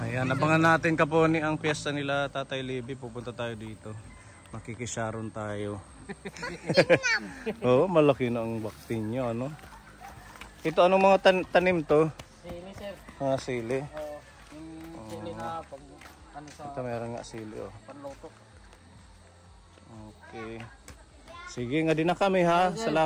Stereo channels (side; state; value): both; identical; correlation 1.00